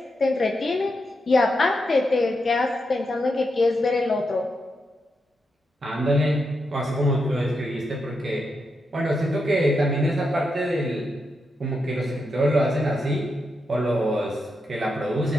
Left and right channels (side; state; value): both; normal; correlation 0.84